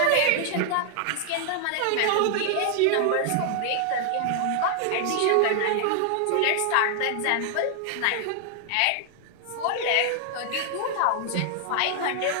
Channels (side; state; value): both; different; correlation 0.00